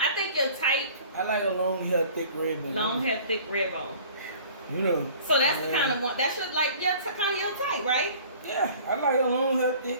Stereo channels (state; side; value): inverted; both; correlation -0.48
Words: think your type. I like a long hair, thick red bone. Long hair, thick red bone. You know. So that's the kind of one. That should like kind of your type, right? Yeah, I like a long hair,